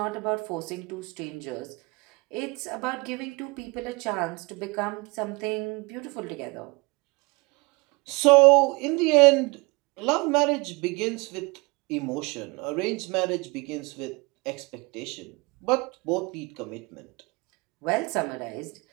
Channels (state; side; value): quieter; left; 26.8 dB